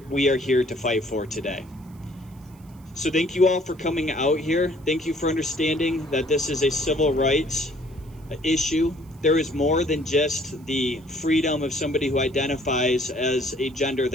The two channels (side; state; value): right; noise; hiss, 30 dB below the sound